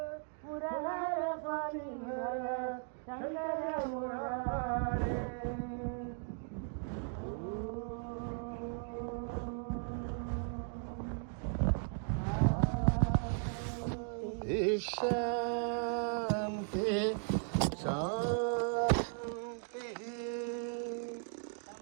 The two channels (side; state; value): left; silent; 53 dB below the other